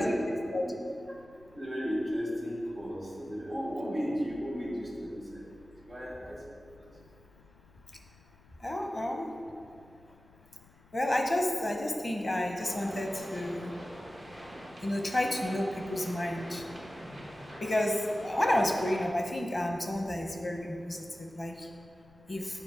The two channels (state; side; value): noise; left; rumble, 26 dB below the sound